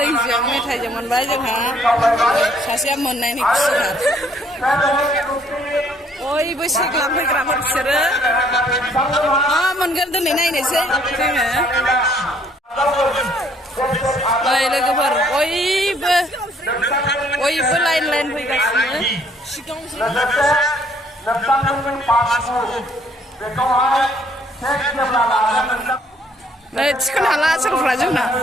मेथाइजों मोनबाय जोंहा सासेया मोननायनि खुसिथार बयबो सेक लांफैग्राफोर बिसोरो मा मोनगोन दिनै नायनोसै जोङो नै लोगोफोर बयबो लाइन फैगासिनो नै थिखोनो हाला सोरफ्रा जोंना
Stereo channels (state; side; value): normal; both; correlation 0.64